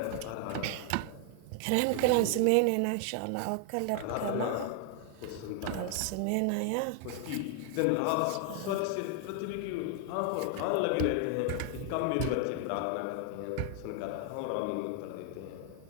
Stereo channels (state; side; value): different; both; correlation 0.00